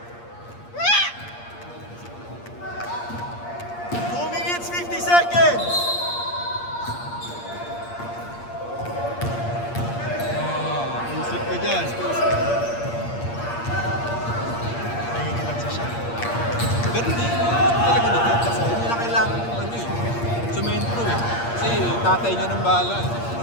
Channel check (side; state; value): right; late; 8.6 ms